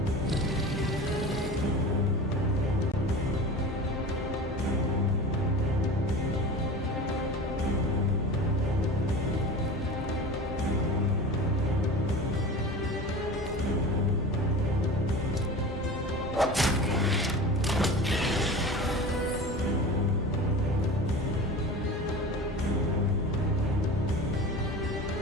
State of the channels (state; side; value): normal; both; correlation 0.34